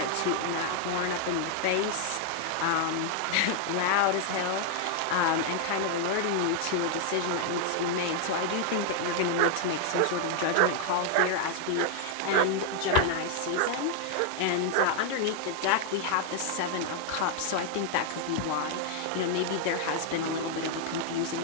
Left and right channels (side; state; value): both; different; correlation 0.00